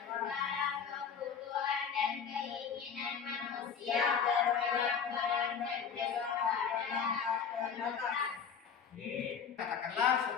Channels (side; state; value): right; quieter; 6.9 dB